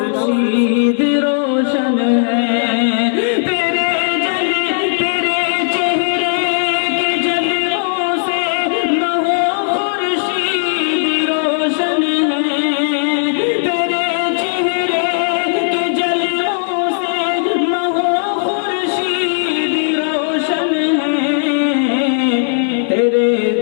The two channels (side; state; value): right; silent; digital silence